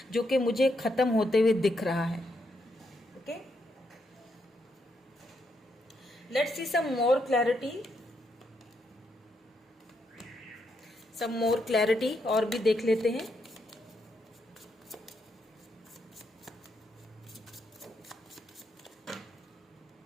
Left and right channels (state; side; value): normal; both; correlation 0.79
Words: जो कि मुझे खत्म होते हुए दिख रहा है। Okay, let's see some more clarity, some more clarity, और भी देख लेते हैं।